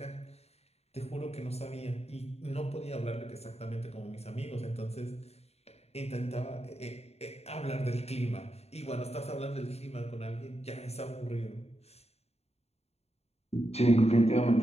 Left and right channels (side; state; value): right; late; 0.30 ms